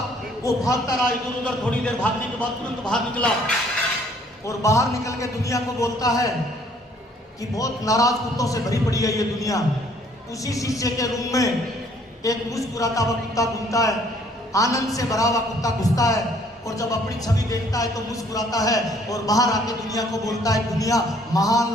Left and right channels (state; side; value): normal; both; correlation 0.61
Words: वो भागता रहा इधर उधर, थोड़ी देर भागने के बाद तुरंत बाहर निकला और बाहर निकल के दुनिया को बोलता है कि बहुत नाराज कुत्तों से भरी पड़ी है ये दुनिया। उसी शीशे के रूम में एक मुस्कुराता हुआ कुत्ता घूमता है, आनंद से भरा हुआ कुत्ता घुसता है और जब अपनी छवि देखता है तो मुस्कुराता है और बाहर आके दुनिया को बोलता है, दुनिया महान